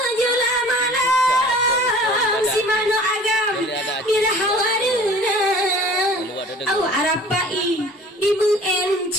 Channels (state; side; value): normal; both; correlation 0.46